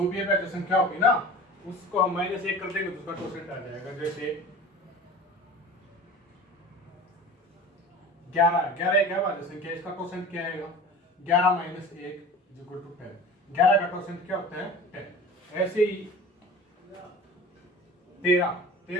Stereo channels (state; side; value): normal; both; correlation 0.38